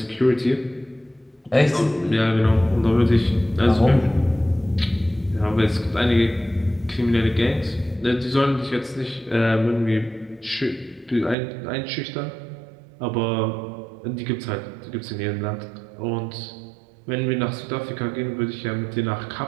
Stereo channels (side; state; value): left; drops out; at 11.4 s